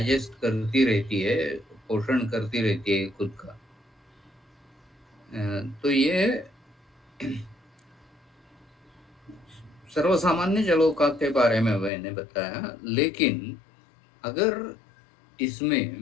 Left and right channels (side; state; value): right; drops out; at 11.9 s